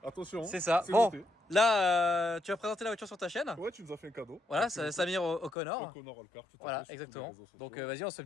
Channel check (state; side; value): drops out; right; at 5.5 s